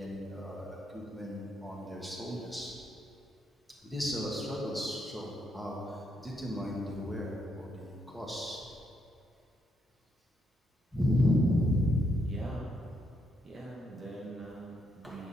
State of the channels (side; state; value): both; normal; correlation 0.77